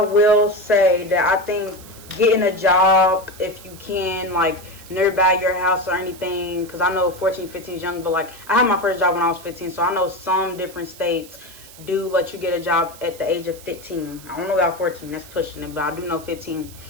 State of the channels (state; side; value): noise; right; hiss, 19 dB below the sound